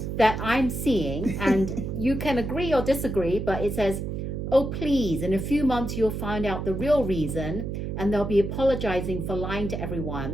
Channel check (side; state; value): right; noise; hum, 4 dB below the sound